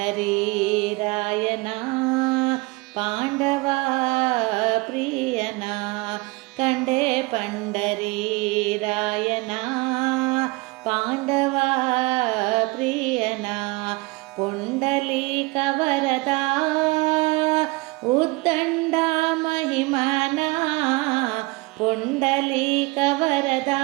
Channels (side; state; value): left; quieter; 24.7 dB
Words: ರಾಯನ ಪಾಂಡವ ಪ್ರಿಯನ ಕಂಡೆ ಪಂಡರಿ ರಾಯನ ಪಾಂಡವ ಪ್ರಿಯನ ಪುಂಡಲೀಕ ವರದ ಉದ್ದಂಡ ಮಹಿಮನ ಪುಂಡಲೀಕ ವರದ